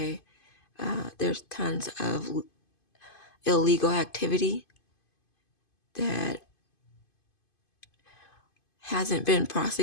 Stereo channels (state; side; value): late; right; 2.5 ms